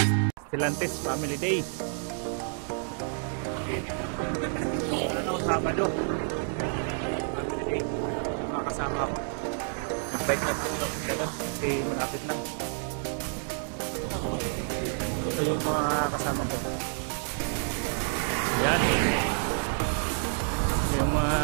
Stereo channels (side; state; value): left; silent; 58 dB below the other